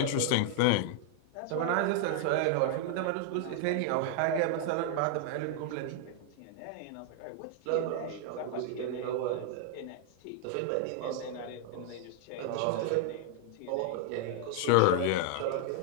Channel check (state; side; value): different; both; correlation 0.00